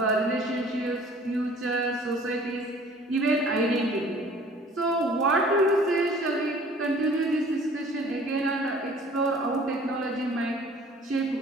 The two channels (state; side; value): normal; both; correlation 0.51